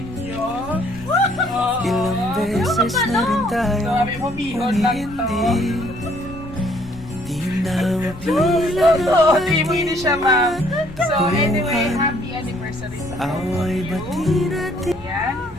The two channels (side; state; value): left; noise; rumble, 18 dB below the sound